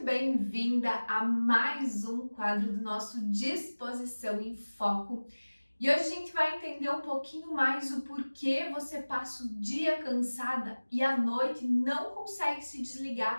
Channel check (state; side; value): inverted; both; correlation -1.00